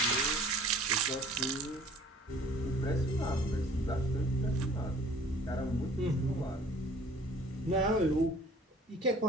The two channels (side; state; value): both; normal; correlation 0.52